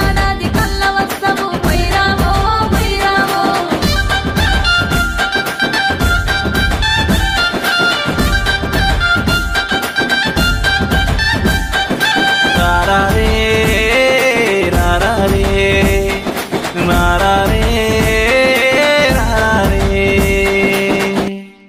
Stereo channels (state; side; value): identical; both; correlation 1.00